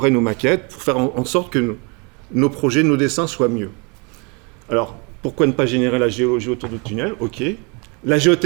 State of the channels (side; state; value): left; quieter; 31.9 dB